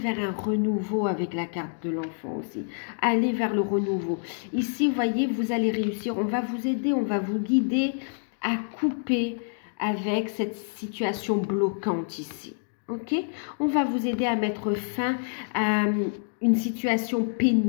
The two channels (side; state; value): right; silent; digital silence